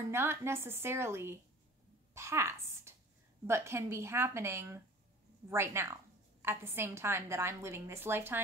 not necessarily past, but can be happening right now. At the same time that I'm living this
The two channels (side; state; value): both; normal; correlation 0.44